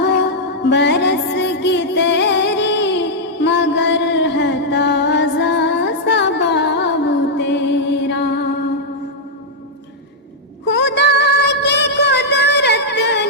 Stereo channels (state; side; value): normal; both; correlation -0.06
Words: बरस की तेरी, मगर है ताज़ा सबाब तेरा। खुदा की कुदरत